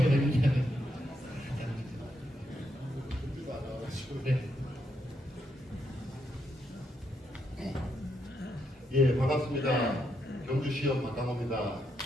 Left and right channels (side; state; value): both; normal; correlation 0.79